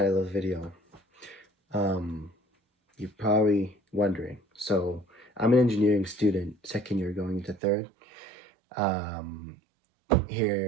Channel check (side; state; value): left; drops out; at 7.6 s